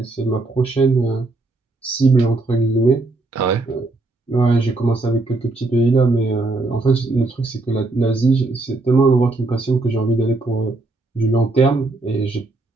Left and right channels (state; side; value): quieter; left; 3.2 dB